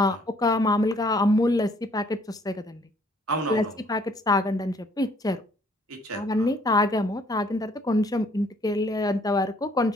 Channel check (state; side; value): normal; both; correlation 0.62